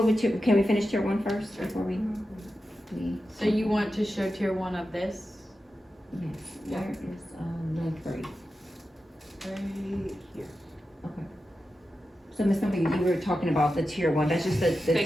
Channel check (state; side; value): normal; both; correlation 0.91